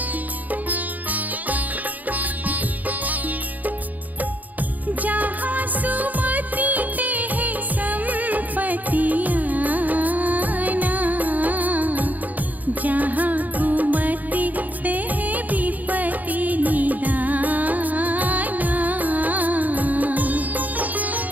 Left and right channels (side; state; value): left; late; 0.080 ms